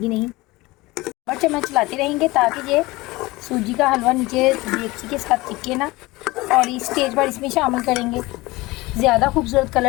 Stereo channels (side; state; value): right; quieter; 21.0 dB